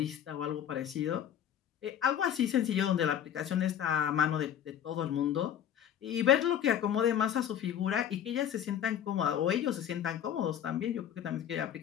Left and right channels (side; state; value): right; quieter; 9.7 dB